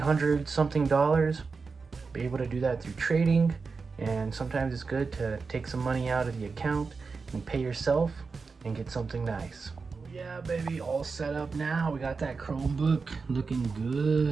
something. Be able to do that through trading, and sometimes it's good to take some money out of the account and pay yourself and get something nice. Yeah, baby, all set up now. We got that Chromebook looking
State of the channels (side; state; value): left; quieter; 4.7 dB